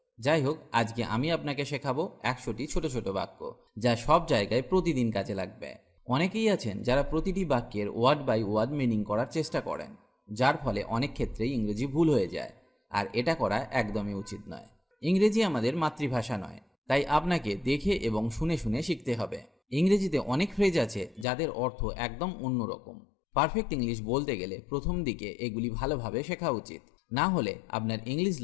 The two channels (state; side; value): drops out; right; at 21.2 s